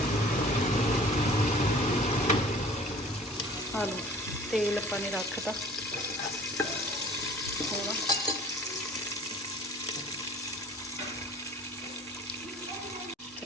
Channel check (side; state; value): both; normal; correlation 0.48